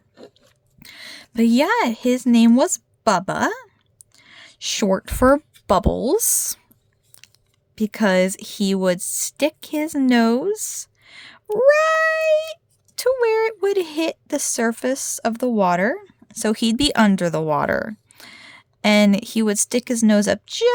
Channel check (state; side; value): identical; both; correlation 1.00